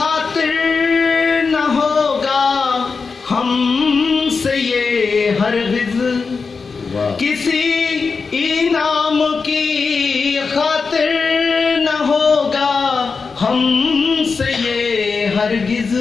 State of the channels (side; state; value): right; quieter; 4.8 dB